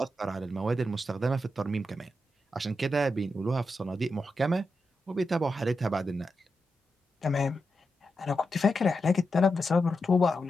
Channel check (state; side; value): normal; both; correlation 0.87